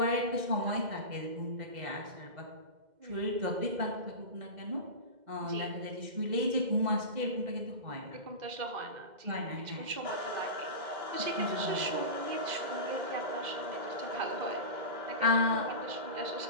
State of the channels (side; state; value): left; late; 2.0 ms